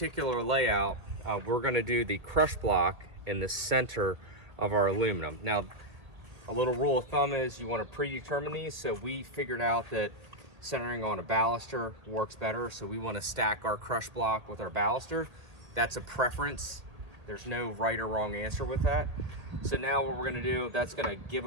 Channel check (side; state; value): left; late; 1.8 ms